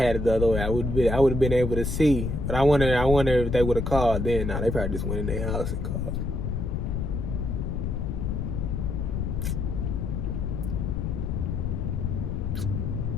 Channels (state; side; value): noise; left; rumble, 1 dB below the sound